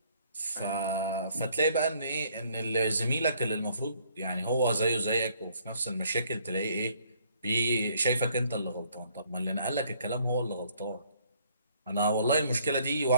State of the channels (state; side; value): inverted; both; correlation -0.64